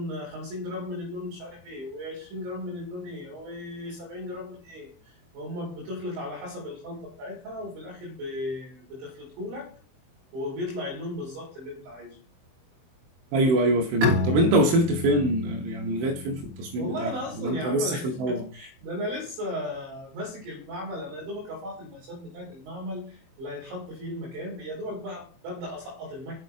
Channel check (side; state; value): left; late; 23 ms